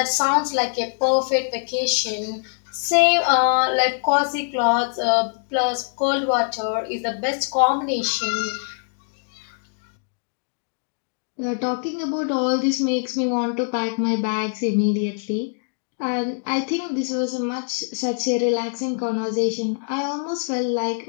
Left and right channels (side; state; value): right; silent; digital silence